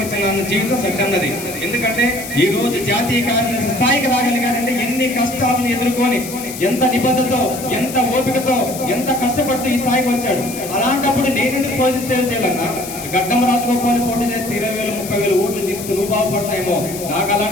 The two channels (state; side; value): noise; left; hiss, 11 dB below the sound